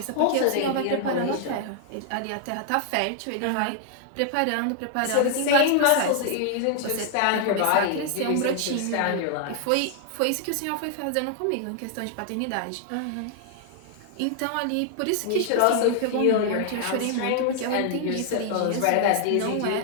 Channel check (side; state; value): both; different; correlation 0.00